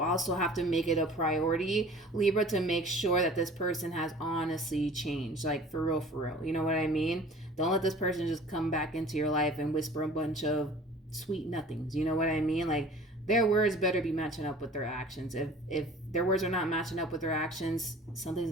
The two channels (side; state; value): both; normal; correlation 0.46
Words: have to make it a priority, Libra, to make sure that this person has honestly changed. Like, for real. You know what I mean? Don't let this person just come back into your life and whisper a bunch of sweet nothings. You know what I mean? Like, their words better be matching up with their actions. If their words are not matching up with their actions, something's